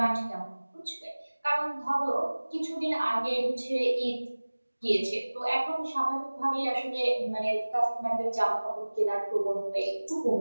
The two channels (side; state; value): both; inverted; correlation -1.00